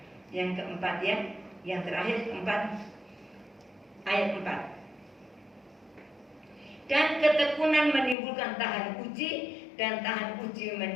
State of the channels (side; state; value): right; drops out; at 8.2 s